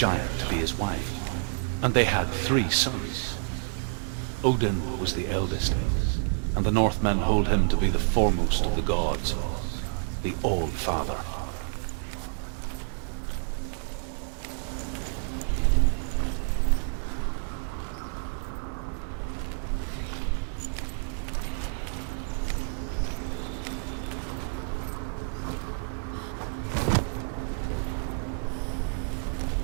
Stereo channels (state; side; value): silent; left; 59 dB below the other